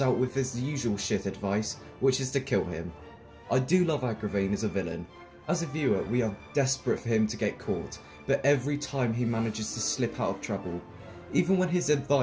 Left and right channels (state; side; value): identical; both; correlation 1.00